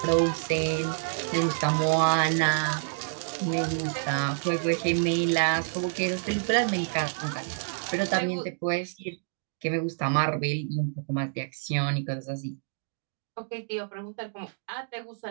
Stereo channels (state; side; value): silent; left; digital silence